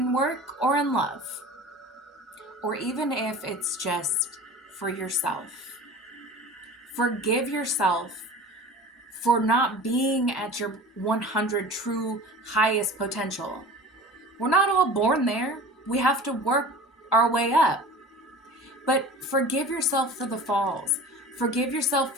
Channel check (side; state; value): both; normal; correlation 0.38